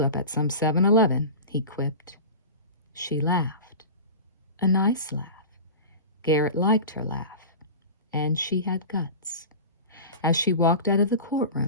at some 7-Eleven, he quipped. She laughed. A nice laugh. Garrett liked her laugh. And she had guts. As she walked out of the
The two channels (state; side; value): inverted; both; correlation -0.32